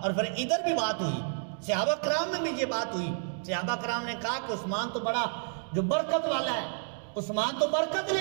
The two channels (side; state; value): left; silent; digital silence